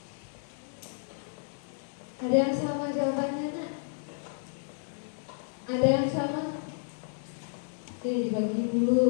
Ada yang sama jawabannya, nak? Ada yang sama? Oke, dibagi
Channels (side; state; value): right; silent; digital silence